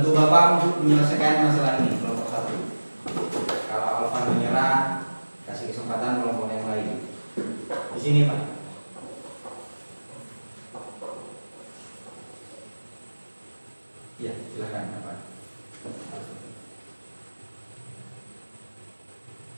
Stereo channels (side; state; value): both; inverted; correlation -1.00